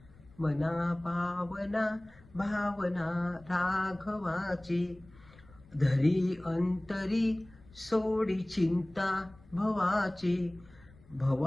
मना पावना भावना राघवाची, धरी अंतरी सोडी चिंता भवाची.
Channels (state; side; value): noise; left; rumble, 25 dB below the sound